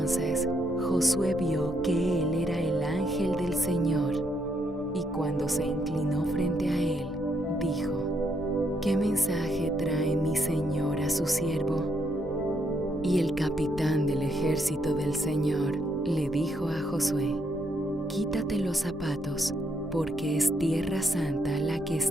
Josué vio que él era el ángel del Señor, y cuando se inclinó frente a él, dijo: ¿Qué mensaje trae mi Señor a su siervo? Y el capitán del ejército del Señor le dijo a Josué: Quítate los zapatos, porque es tierra santa la que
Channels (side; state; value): both; normal; correlation 0.75